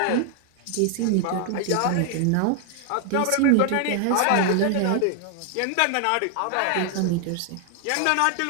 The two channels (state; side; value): different; both; correlation 0.00